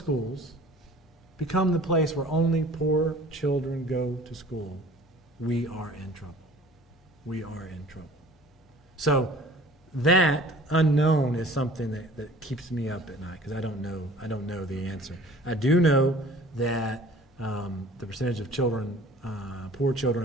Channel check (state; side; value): normal; both; correlation 0.47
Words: become the place where only poor children go to school, we are in trouble. We are in trouble. So that unknown is something that keeps me up at night because I don't know the answer. I do know that the percentage of children, poor children